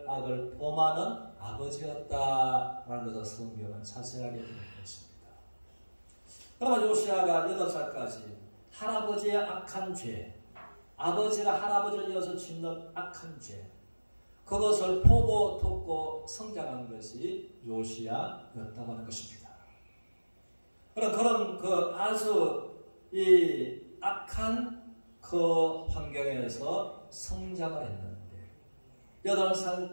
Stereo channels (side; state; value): both; inverted; correlation -1.00